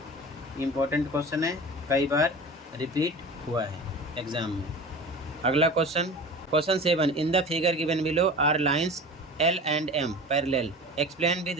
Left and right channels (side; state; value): both; normal; correlation 0.36